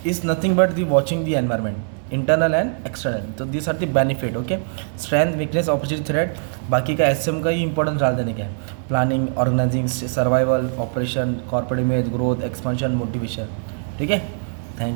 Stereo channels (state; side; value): silent; left; 64 dB below the other